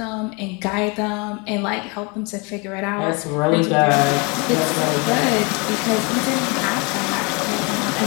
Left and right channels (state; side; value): quieter; right; 30.3 dB